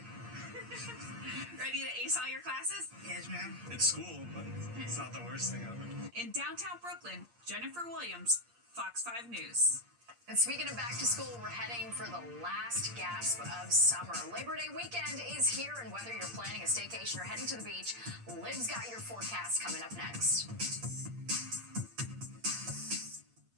Ready to ace all your classes? Yes, ma'am. It's school, but it's not the worst thing ever. In downtown Brooklyn, Jennifer Williams, Fox 5 News. And speaking of back to school, we're heading for the last gasp of summer. Labor Day weekend is here, and whether you're planning a staycation or heading to the beach, Liv's got your forecast coming up next.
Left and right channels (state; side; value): late; left; 8.6 ms